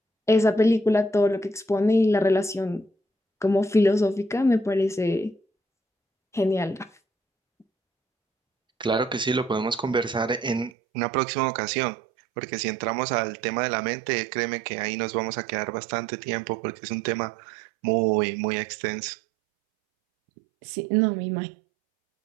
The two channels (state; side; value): drops out; left; at 10.7 s